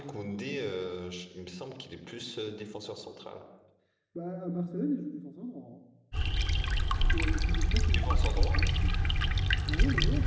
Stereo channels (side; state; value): both; identical; correlation 1.00